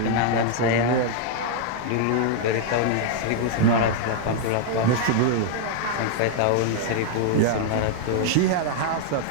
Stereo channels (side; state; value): both; different; correlation -0.01